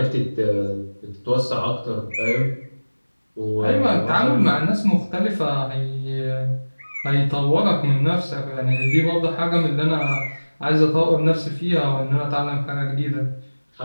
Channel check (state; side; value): inverted; both; correlation -1.00